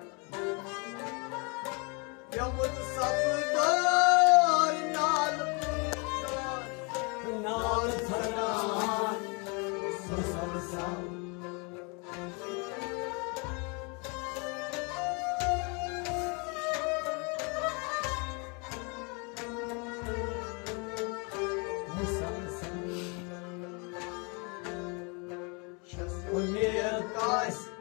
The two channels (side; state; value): right; quieter; 32.1 dB